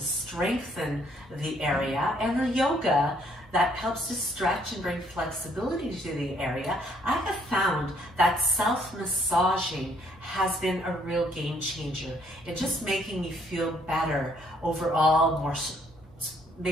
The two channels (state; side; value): normal; both; correlation 0.66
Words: the area, and the yoga that helps to stretch and bring flexibility to the area, I have found that self-massaging has been a real game changer in just making me feel better overall,